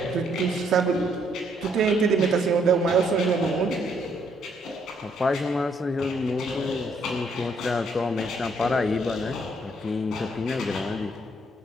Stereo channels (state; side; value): normal; both; correlation 0.70